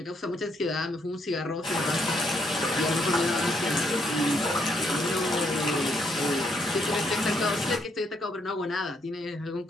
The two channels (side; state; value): both; normal; correlation 0.74